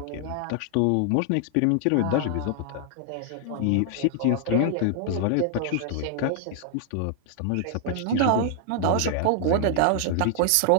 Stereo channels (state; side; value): different; both; correlation -0.01